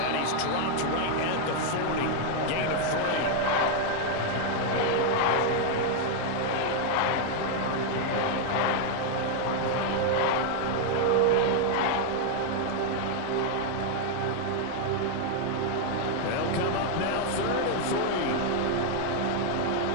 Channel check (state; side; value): different; both; correlation 0.00